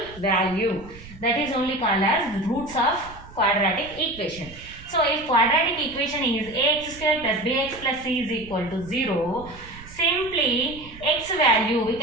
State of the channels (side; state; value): right; noise; rumble, 18 dB below the sound